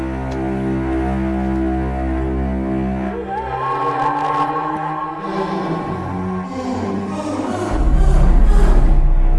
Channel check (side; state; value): both; identical; correlation 1.00